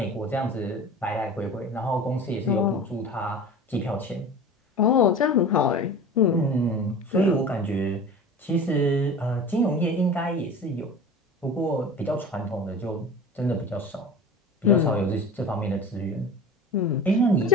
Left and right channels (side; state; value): both; normal; correlation 0.36